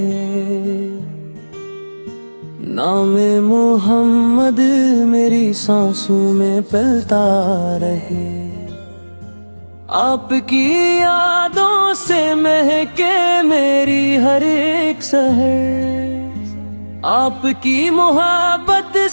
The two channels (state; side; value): inverted; both; correlation -1.00